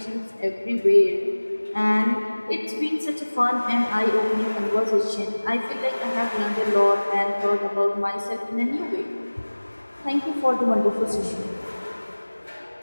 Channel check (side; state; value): both; inverted; correlation -1.00